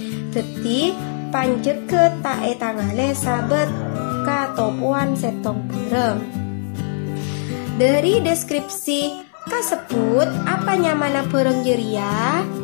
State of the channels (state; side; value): silent; right; 66 dB below the other